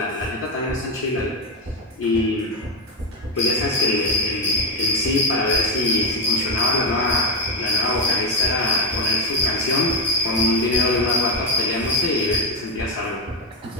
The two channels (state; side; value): normal; both; correlation 0.08